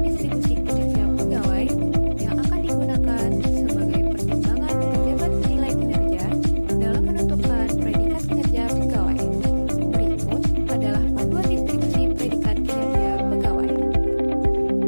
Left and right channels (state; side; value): inverted; both; correlation -1.00